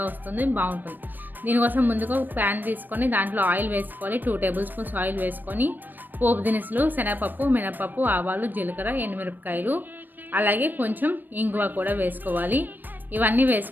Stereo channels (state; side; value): late; left; 0.088 ms